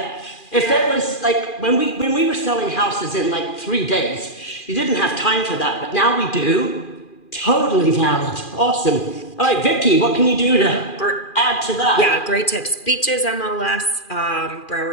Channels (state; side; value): late; right; 2.4 ms